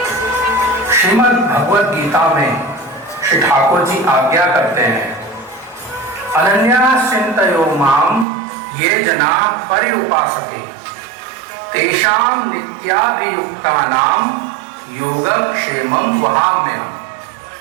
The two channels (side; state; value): left; drops out; at 8.2 s